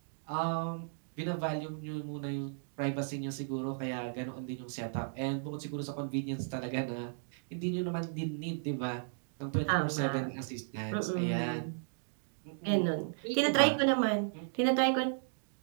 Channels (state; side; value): silent; left; digital silence